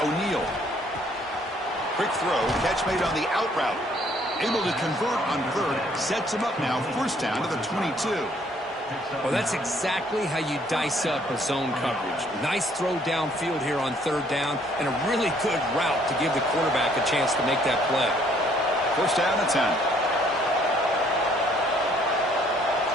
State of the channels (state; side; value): normal; both; correlation 0.63